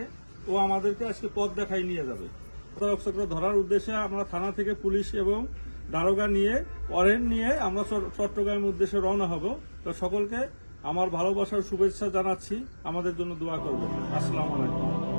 ও আমাদেরকে আজকে পথ দেখাই নিয়ে যাবে। প্রতারক চক্র ধরার উদ্দেশ্যে আমরা থানা থেকে পুলিশ এবং দারোগা নিয়ে ওয়ারেন্ট নিয়ে আমরা চট্টগ্রামের উদ্দেশ্যে রওনা হব। তো সকলকে আমার ভালোবাসার শুভেচ্ছা জানাচ্ছি, আমাদের জন্য দোয়া করবেন। আসসালামু আলাইকুম।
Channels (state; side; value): inverted; both; correlation -1.00